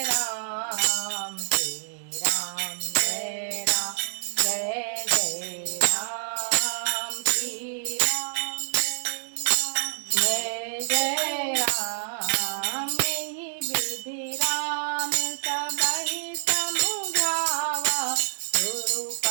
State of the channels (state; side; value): silent; left; digital silence